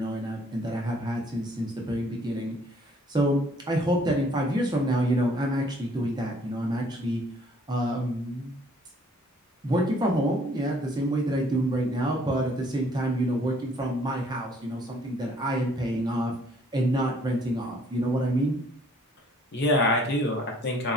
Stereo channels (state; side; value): normal; both; correlation 0.60